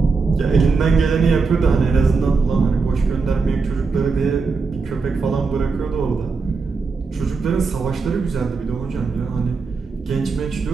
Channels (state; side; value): quieter; left; 4.6 dB